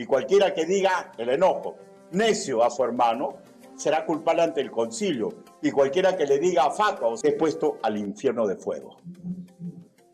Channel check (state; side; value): identical; both; correlation 1.00